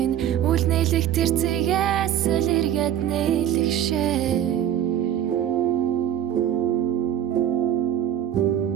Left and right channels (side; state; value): left; quieter; 10.6 dB